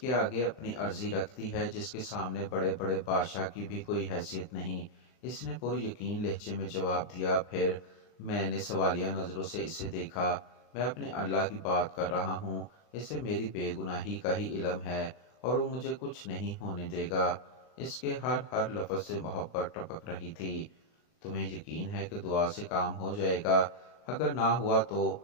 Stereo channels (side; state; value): right; late; 39 ms